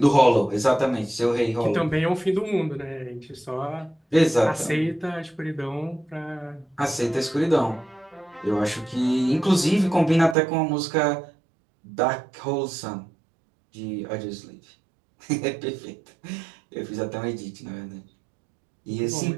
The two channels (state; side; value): drops out; left; at 10.4 s